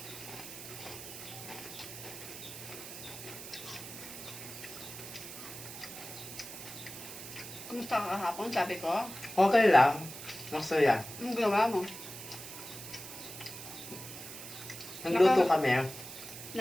Kumusta ka kahapon? Sabi ko. Okay lang. Masaya. Anong ginawa mo? Nagluto kami.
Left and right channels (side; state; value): right; noise; hiss, 11 dB below the sound